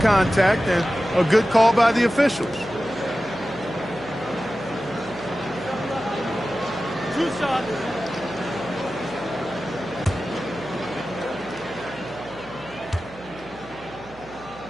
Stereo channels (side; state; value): right; noise; hum, 21 dB below the sound